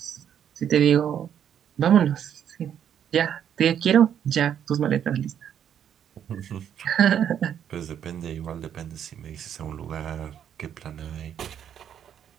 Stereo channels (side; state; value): left; quieter; 9.2 dB